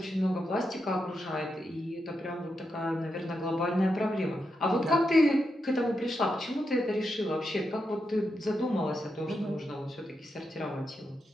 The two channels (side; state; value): both; normal; correlation 0.85